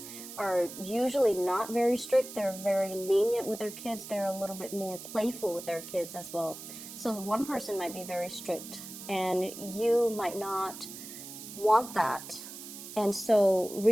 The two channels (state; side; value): noise; right; hiss, 12 dB below the sound